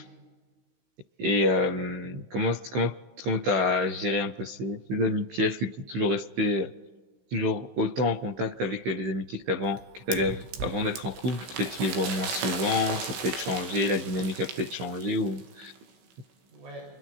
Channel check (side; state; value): left; late; 16 ms